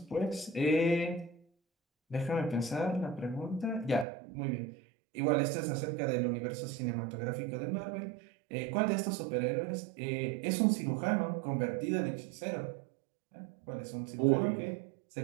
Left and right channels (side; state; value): left; drops out; at 4.0 s